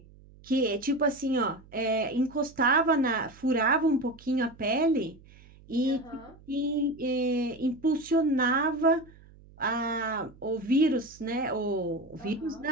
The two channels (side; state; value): right; noise; hum, 24 dB below the sound